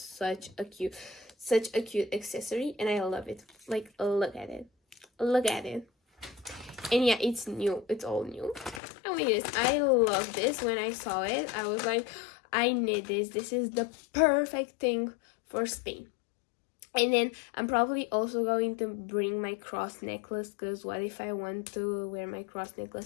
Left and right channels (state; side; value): drops out; right; at 8.8 s